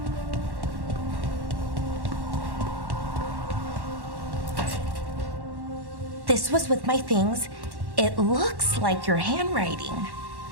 This was with my things. It looks like your handwriting.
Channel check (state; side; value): late; left; 1.1 ms